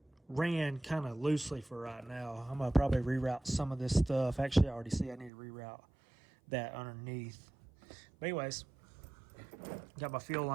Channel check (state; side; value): drops out; left; at 5.3 s